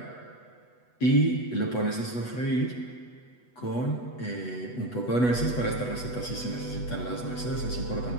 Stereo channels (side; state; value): right; late; 8.1 ms